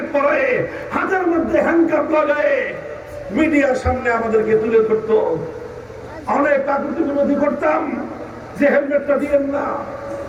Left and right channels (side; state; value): both; identical; correlation 1.00